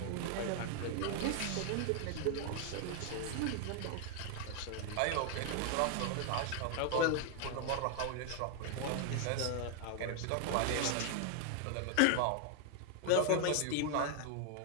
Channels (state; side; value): different; both; correlation 0.00